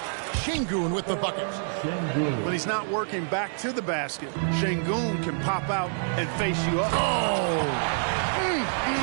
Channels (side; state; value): left; silent; 60 dB below the other